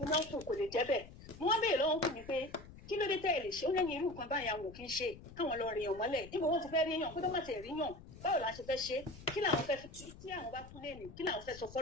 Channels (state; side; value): noise; left; rumble, 17 dB below the sound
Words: náà kù kò lè jẹ́ bẹ́ẹ̀ mo wá béèrè lọ́wọ́ kù mí pé kí ló dé tẹ́ ẹ lè ṣe ó lẹ́yìn irú nǹkan báyìí àwọn kì í ṣe káwọn lọ rìnyàn mọ́lẹ̀ níbo wọ́n ti fẹ́ ríyàn kó tó má tẹ̀ ríyàn báwo la ṣe fẹ́ ṣe kí làwọn fẹ́ tí àwọn bá tún lé ní kí làwọn fẹ́ sọ